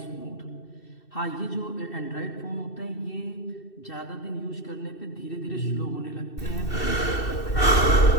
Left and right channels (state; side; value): late; right; 2.7 ms